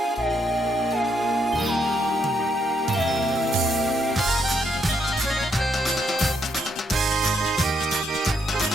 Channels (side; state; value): both; normal; correlation 0.76